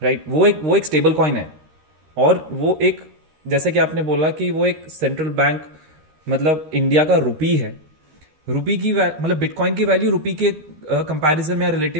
राइट। वो एक स्टेबल कॉइन है, और वो एक, जैसे कि आपने बोला कि वो एक सेंट्रल बैंक मतलब इंडिया का रुपी है। रुपी की मतलब बिटकॉइन की वैल्यू रुपी के कंपैरिजन में या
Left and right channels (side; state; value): left; late; 13 ms